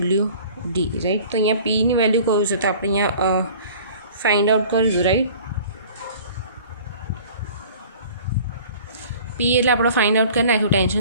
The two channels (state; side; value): inverted; both; correlation -0.47